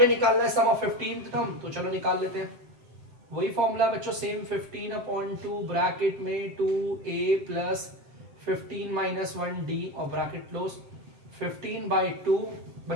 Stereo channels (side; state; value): left; late; 7.7 ms